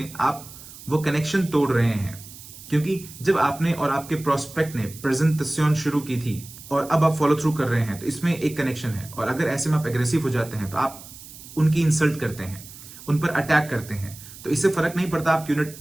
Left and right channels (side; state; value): right; noise; hiss, 17 dB below the sound